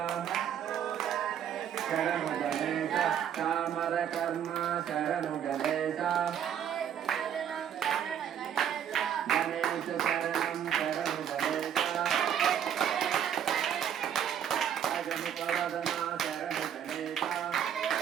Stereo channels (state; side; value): quieter; left; 9.2 dB